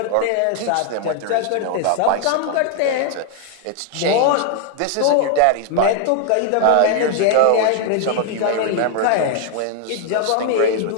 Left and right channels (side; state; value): both; different; correlation 0.00